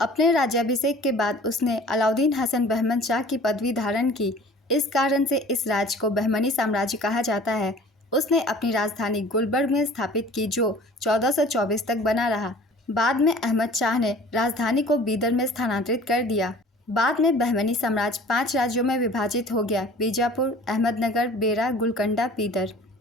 राज्याभिषेक के बाद उसने अलाउद्दीन हसन बहमन शाह की पदवी धारण की। इस कारण से इस राज्य को बहमनी साम्राज्य कहा जाता है। उसने अपनी राजधानी गुलबर्ग में स्थापित की जो 1424 तक बना रहा। बाद में अहमद शाह ने राजधानी को बीदर में स्थानांतरित कर दिया। बाद में बहमनी साम्राज्य 5 राज्यों में विभाजित हो गया: बीजापुर, अहमदनगर, बेरा, गुलकंडा, बीदर।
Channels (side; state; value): both; normal; correlation 0.47